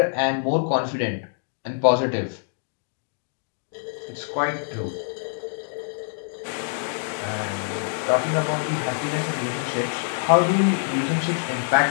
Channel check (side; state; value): right; silent; digital silence